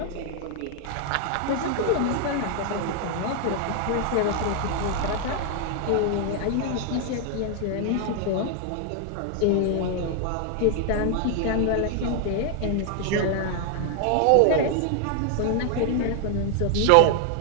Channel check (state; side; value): different; both; correlation 0.00